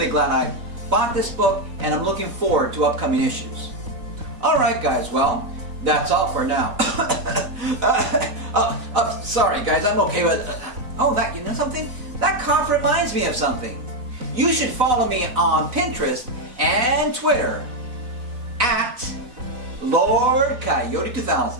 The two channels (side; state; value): left; late; 4.0 ms